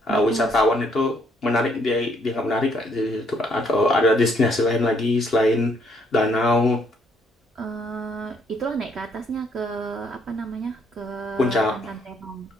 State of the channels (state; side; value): normal; both; correlation 0.68